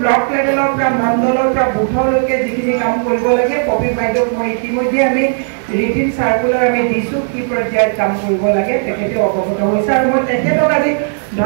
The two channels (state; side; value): silent; left; digital silence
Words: ব্লক লেভেলৰ পৰা মণ্ডলৰ পৰা বুথলৈকে যিখিনি কাম কৰিব লাগে, কবি বাইদেউক মই ইতিমধ্যে আমি ৰিটিন চাৰ্কুলাৰ আমি দিছোঁ, কি পৰ্যায়ত কাম কৰিব লাগে তেখেতে অৱগত হৈছে। আৰু মই তেখেতক আজি